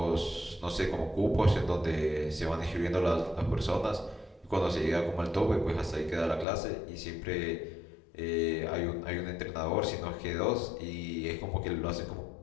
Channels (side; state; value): right; drops out; at 6.5 s